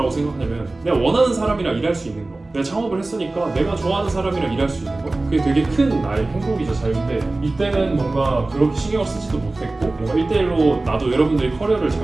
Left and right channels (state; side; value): quieter; left; 3.1 dB